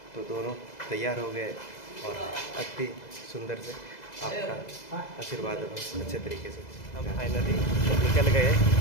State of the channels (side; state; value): right; late; 2.0 ms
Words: तो दोनों तैयार हो गए और अति सुंदर से आपका आशीर्वाद होगा अच्छे तरीके से। हम फाइनली निकल गए